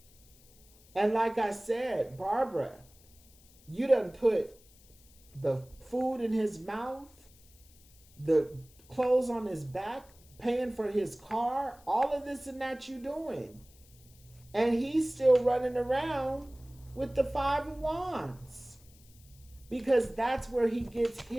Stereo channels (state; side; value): noise; left; hiss, 27 dB below the sound